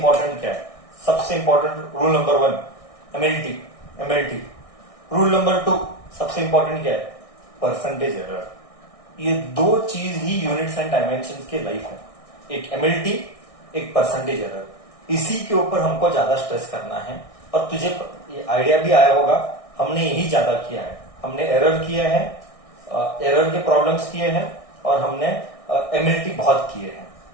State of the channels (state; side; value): late; right; 1.6 ms